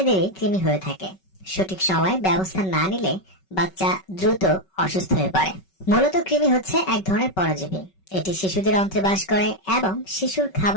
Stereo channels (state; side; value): late; right; 5.3 ms